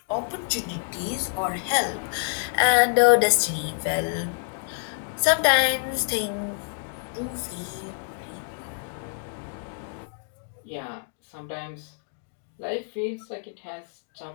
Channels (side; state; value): right; silent; digital silence